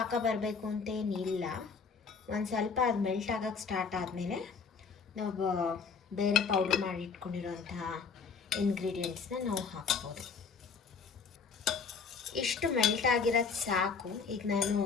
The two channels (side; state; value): right; quieter; 5.5 dB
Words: ಬರಬೇಕು ಅಂತೇನಿಲ್ಲ. ಒಂದು ಸ್ವಲ್ಪ ಅದು ಮೆಲ್ಟ್ ಆಗೋಕ್ಕೆ ಸ್ಟಾರ್ಟ್ ಆದಮೇಲೆ ನಾವು ಬೇರೆ ಪೌಡ್ರ್ ಮಾಡಿ ಇಟ್ಕೊಂಡಿರೋಂತಹ ಇಂಗ್ರೀಡಿಯೆಂಟ್ಸ್ನ ನಾವು ಹಾಕ್ಬೋದು. ಇಷ್ಟು ಮೆಲ್ಟ್ ಆಗಿರೋದು ಸಾಕು. ಈಗ ನಾನು